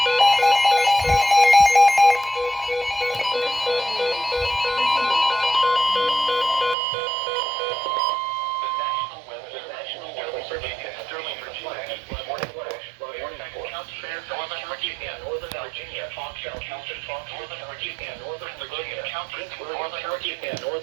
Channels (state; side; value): drops out; left; at 6.8 s